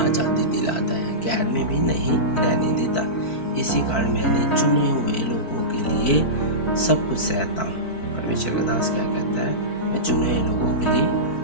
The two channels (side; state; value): right; late; 4.5 ms